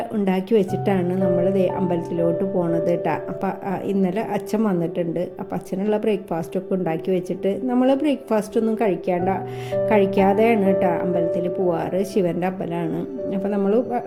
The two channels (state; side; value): identical; both; correlation 1.00